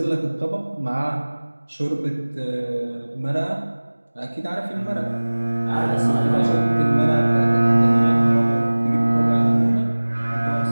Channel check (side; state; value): both; inverted; correlation -1.00